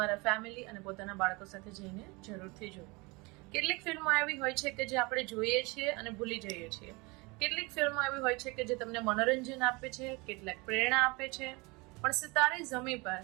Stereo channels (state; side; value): quieter; left; 26.3 dB